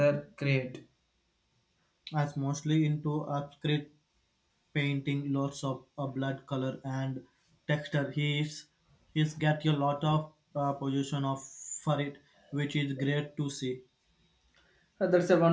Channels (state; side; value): identical; both; correlation 1.00